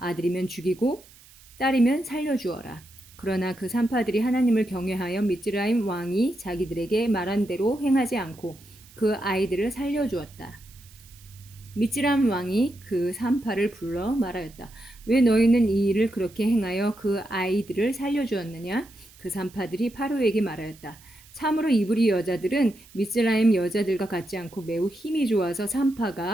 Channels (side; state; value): right; noise; hiss, 25 dB below the sound